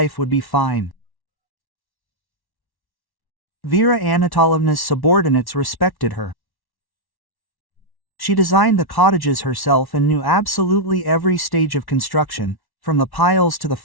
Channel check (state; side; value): late; right; 1.1 ms